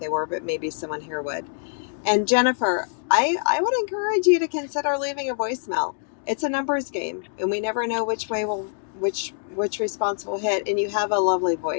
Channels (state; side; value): silent; right; digital silence